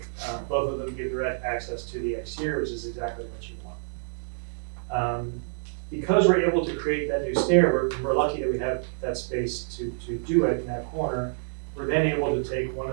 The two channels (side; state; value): left; silent; digital silence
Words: Both of them give direct access to the exterior, which is exactly what you want. Because we're able to create that new stair, we're lucky that we have that space to do it in that corner. We're then able to take one